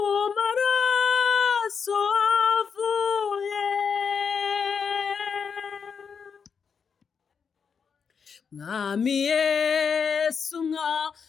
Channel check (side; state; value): right; quieter; 6.2 dB